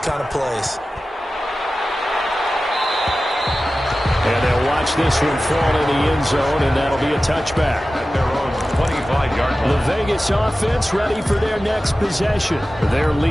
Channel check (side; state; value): both; normal; correlation 0.95